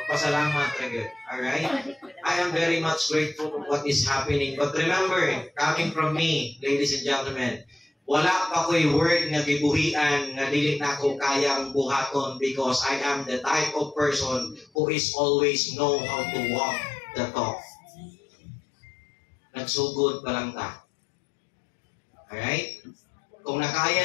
ra gyud. Alright? I am very much grateful for what is happening. But remember, coming from me, ladies and gentlemen, wala pa ko'y word nga gibuhian nga dili na ko kayang buhaton because I am the type of person who is always know how to walk the talk. Nagsugod pa lang ta. Alright? Kung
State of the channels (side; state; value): right; drops out; at 14.7 s